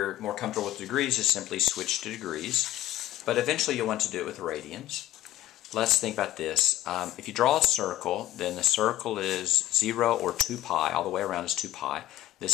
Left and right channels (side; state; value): right; quieter; 14.4 dB